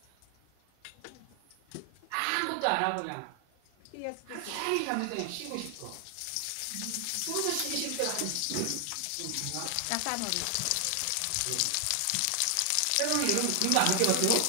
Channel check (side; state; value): both; different; correlation 0.00